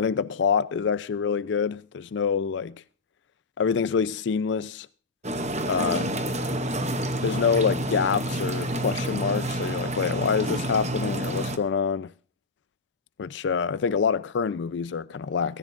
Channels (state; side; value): quieter; right; 4.0 dB